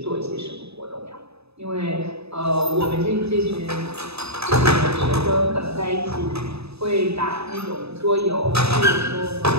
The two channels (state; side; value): late; left; 0.79 ms